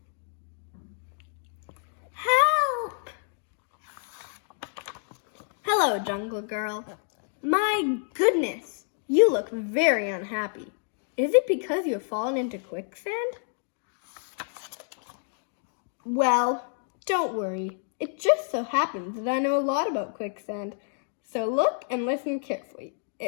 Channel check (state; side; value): silent; right; 59 dB below the other